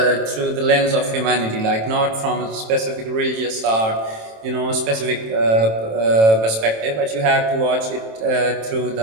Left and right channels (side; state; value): left; late; 27 ms